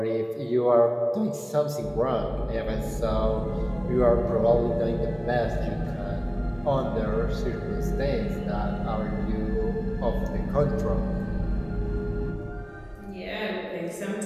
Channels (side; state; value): both; identical; correlation 1.00